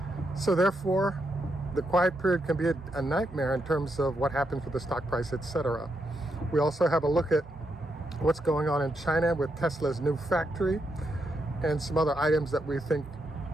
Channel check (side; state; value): both; normal; correlation 0.81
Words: So therefore, the quiet period can be a nightmare in terms of what happens with the stock price, etc. We also have a look at what's going on in China with Tesla's new factory and some other items that we think